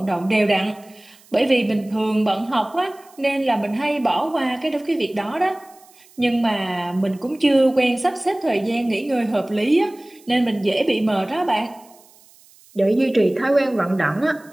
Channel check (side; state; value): right; noise; hiss, 27 dB below the sound